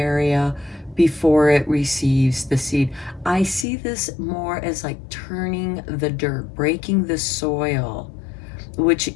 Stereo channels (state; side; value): drops out; right; at 3.7 s